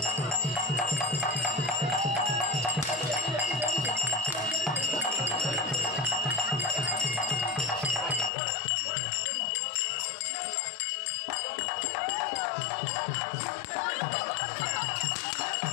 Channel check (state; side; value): drops out; right; at 8.3 s